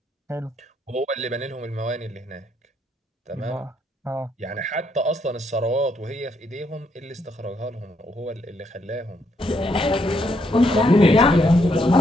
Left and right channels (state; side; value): normal; both; correlation 0.74